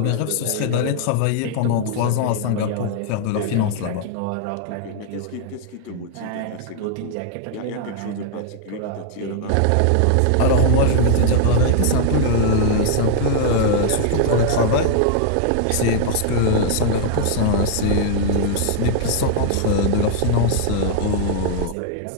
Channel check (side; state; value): both; different; correlation -0.01